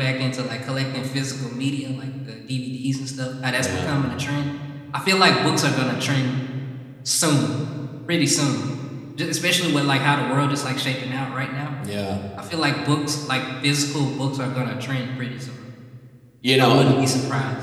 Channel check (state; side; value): identical; both; correlation 1.00